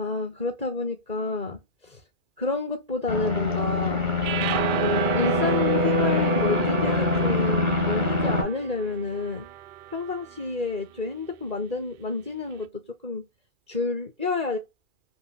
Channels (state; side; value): late; left; 2.4 ms